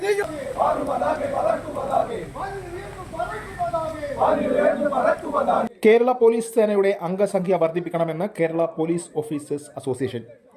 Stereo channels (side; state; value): both; identical; correlation 1.00